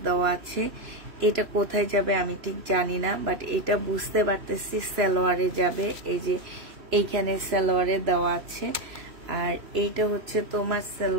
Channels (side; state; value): left; late; 3.0 ms